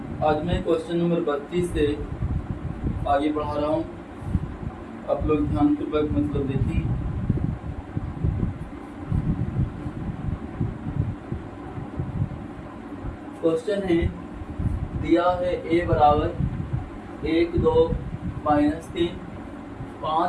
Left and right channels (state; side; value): identical; both; correlation 1.00